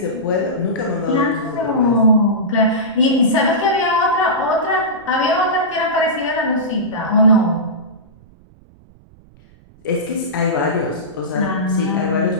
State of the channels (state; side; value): noise; right; rumble, 27 dB below the sound